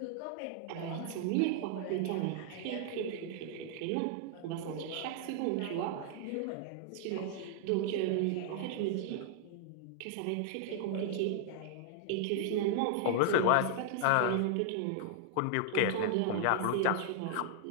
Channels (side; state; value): both; different; correlation -0.01